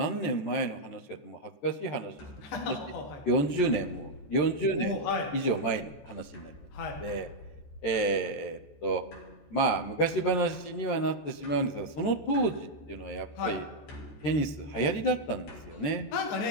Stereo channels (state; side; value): late; right; 14 ms